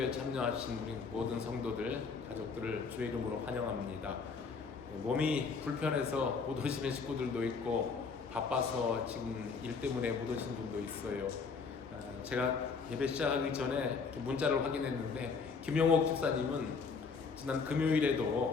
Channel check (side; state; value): right; quieter; 5.1 dB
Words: 참여하신 우리 모든 성도들, 가족들을 주의 이름으로 환영합니다. 몸이 불편해서 못 오시는 식구들도 있고 바빠서 지금 일 때문에 못 오신 분도 있어요. 제가 예배 시작하기 전에 문자를 확인했는데 김영옥 집사님은 지난